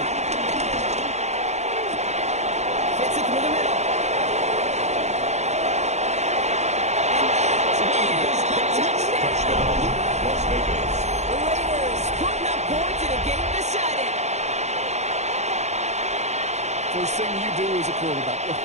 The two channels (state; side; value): late; left; 0.33 ms